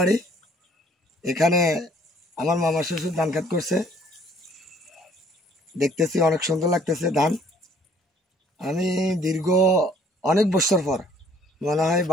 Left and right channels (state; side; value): normal; both; correlation 0.59